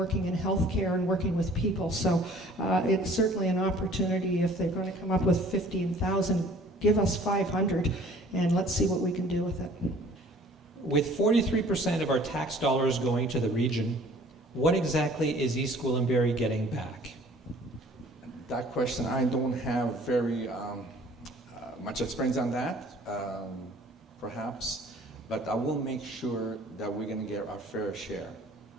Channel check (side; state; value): both; normal; correlation 0.52